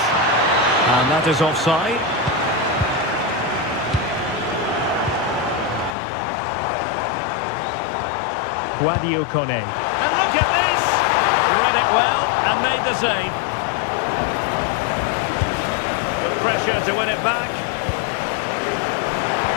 And that is offside. Guadio Kone. And look at this! Read it well and made the save. Good pressure to win it back.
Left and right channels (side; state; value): right; drops out; at 6.0 s